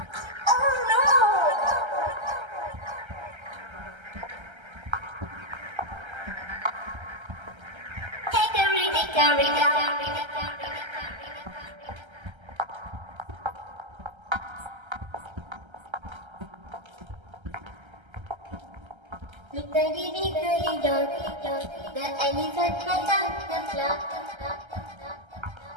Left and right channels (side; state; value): left; late; 1.3 ms